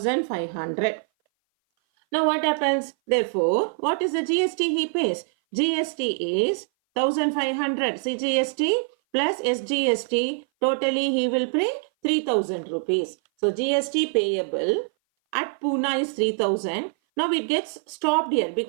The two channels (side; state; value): left; silent; 58 dB below the other